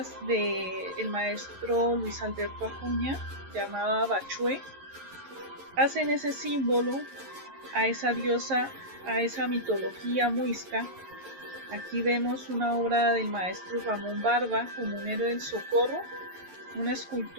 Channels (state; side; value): late; left; 11 ms